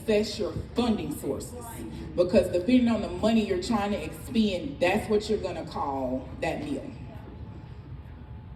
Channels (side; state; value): both; identical; correlation 1.00